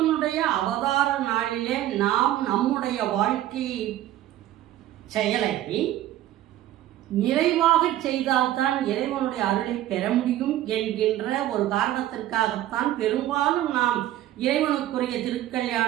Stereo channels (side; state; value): left; quieter; 13.5 dB